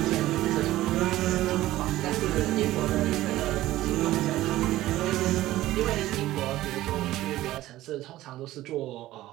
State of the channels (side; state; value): left; quieter; 15.6 dB